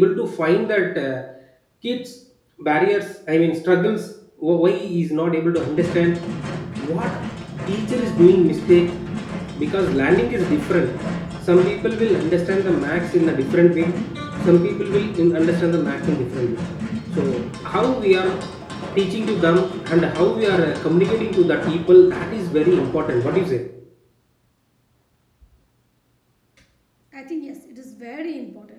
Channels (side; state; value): both; identical; correlation 1.00